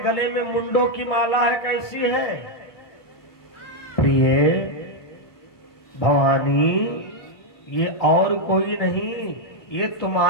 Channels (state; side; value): late; right; 1.2 ms